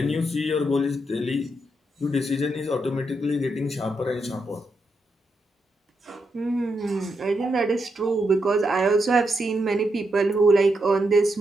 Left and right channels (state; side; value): normal; both; correlation 0.82